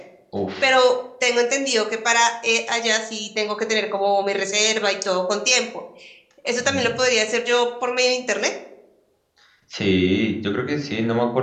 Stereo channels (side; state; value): both; identical; correlation 1.00